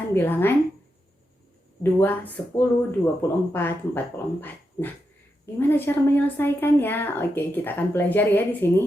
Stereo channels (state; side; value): normal; both; correlation 0.86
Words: bilangan 2, 10, 24, 44. Nah, gimana cara menyelesaikannya? Oke, kita akan pelajari ya di